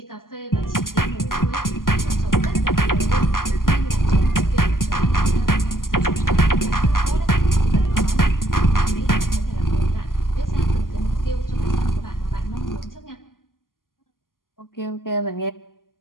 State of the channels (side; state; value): right; late; 0.91 ms